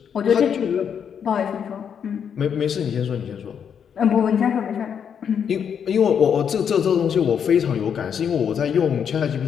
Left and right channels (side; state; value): right; quieter; 7.7 dB